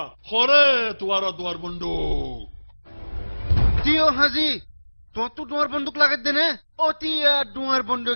খরে তোমার দুয়ার বন্ধু দিও হাজি তো তুই দুয়ার বন্দুক লাগাত দে নে অতি দুয়ার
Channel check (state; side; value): inverted; both; correlation -1.00